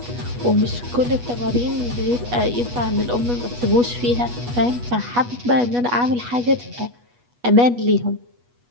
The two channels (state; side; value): late; left; 8.2 ms